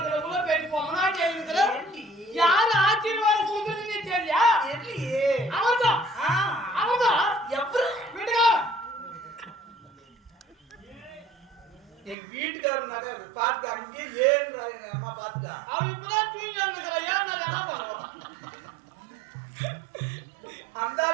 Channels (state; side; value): drops out; left; at 12.2 s